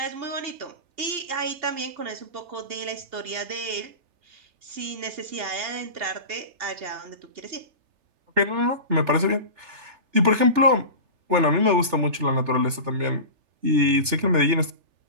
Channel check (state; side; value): late; left; 3.3 ms